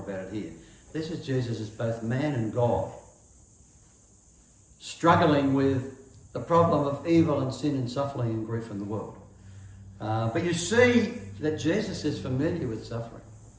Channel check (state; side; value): identical; both; correlation 1.00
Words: about it here. This is Jesus as both man and God, struggling with the problem of evil and sin and suffering and grief in the world. But you see that Jesus is familiar with suffering,